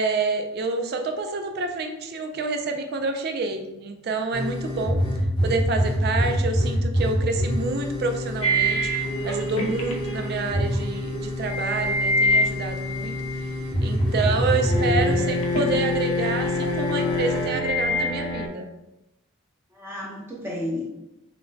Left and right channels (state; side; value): normal; both; correlation 0.39